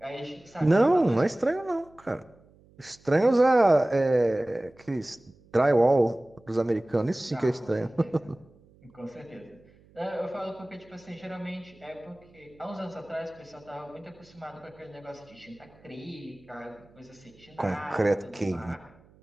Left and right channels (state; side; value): noise; right; hum, 28 dB below the sound